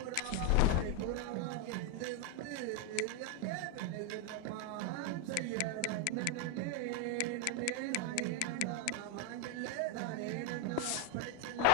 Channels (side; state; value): both; different; correlation 0.01